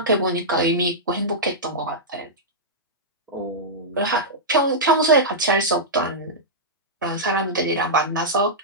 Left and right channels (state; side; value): normal; both; correlation -0.11